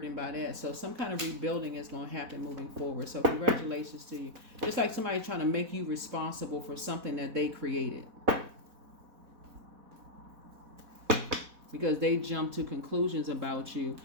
by that. So some kind of rebuilding is going to happen moving forward. So congratulations to you. It's like somebody trying to make you responsible for something that they created. Because they jump to conclusions about you.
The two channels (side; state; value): left; late; 4.1 ms